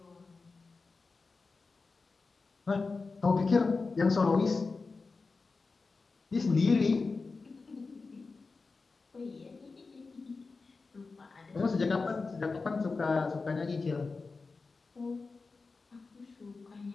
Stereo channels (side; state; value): right; quieter; 4.1 dB